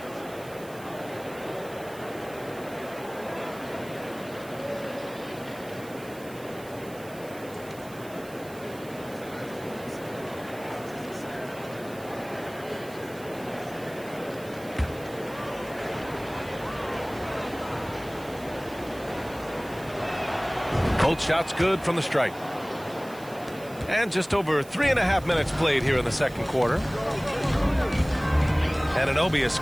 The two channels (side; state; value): right; noise; hiss, 20 dB below the sound